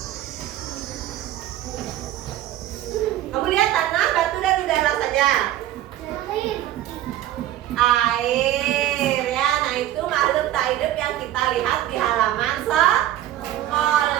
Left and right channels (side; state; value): left; quieter; 13.1 dB